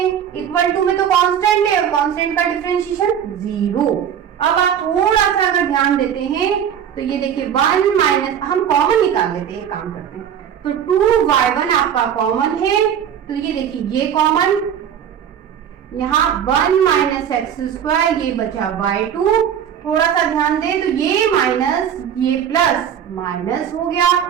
इक्वल टू में तो कांस्टेंट है और कांस्टेंट का डिफरेंशिएशन 0। अब आप थोड़ा सा अगर ध्यान देते हैं तो ये देखिए 1 माइनस, हम कॉमन निकाल लेते हैं, काम करते हैं। तो 2y1 आपका कॉमन है, तो ये देखिए ये कॉमन, यहाँ 1 माइनस एक्स स्क्वायर, ये बचा y2। थोड़ा सा ध्यान दे तो ये माइनस ये प्लस माइनस हो गया।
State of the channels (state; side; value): quieter; left; 9.0 dB